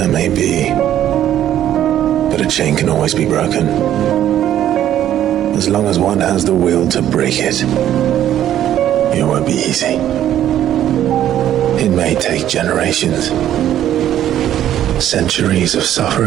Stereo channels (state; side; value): quieter; left; 11.5 dB